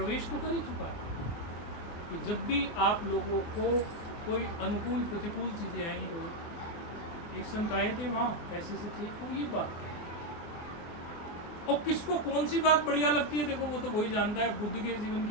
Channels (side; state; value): right; late; 24 ms